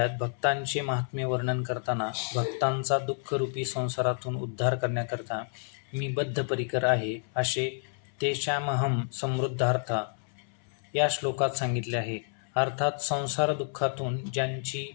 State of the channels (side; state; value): right; silent; 58 dB below the other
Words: भक्तांचे महात्म्य वर्णन करताना भक्तांचा दुःखरूपी संसारातून उद्धार करण्याकरता मी बद्धपरिकर आहे असे तेषामहम समृद्धार्था या श्लोकात सांगितले आहे. अर्थात संसार दुःखातून ज्यांची